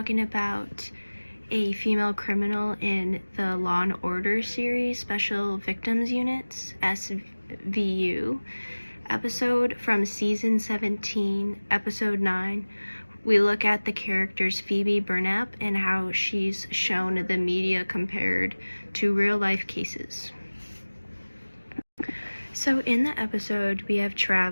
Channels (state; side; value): inverted; both; correlation -1.00